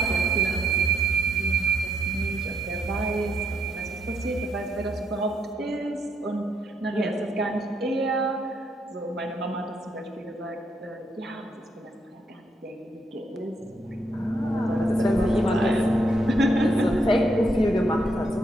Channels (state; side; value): normal; both; correlation 0.76